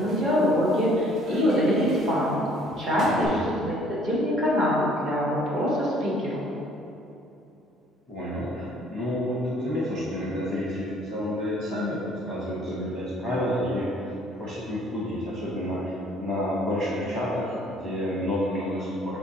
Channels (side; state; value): both; normal; correlation 0.59